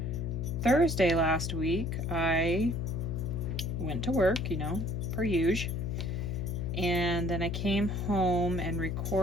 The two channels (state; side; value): noise; left; hum, 2 dB below the sound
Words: Thursday last week, I went to work, you know, per usual. And then I came home and